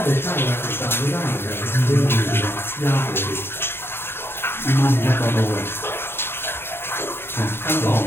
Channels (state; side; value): late; right; 0.11 ms